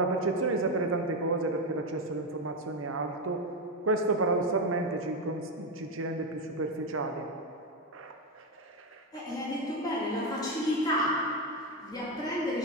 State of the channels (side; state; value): both; normal; correlation 0.09